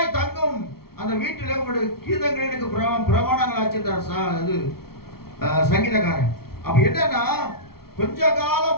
தங்கும் அந்த வீட்டில் உங்களுடைய கீதங்கள் எனக்கு பிரமாணங்கள் ஆச்சிருந்தார் இது சங்கீதக்காரன். அப்ப என்னன்னா கொஞ்ச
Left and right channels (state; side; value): late; right; 0.94 ms